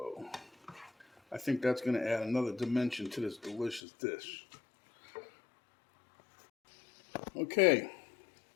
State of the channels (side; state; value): right; drops out; at 3.8 s